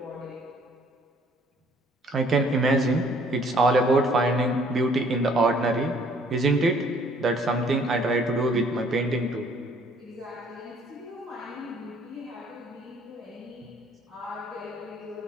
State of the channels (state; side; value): normal; both; correlation 0.60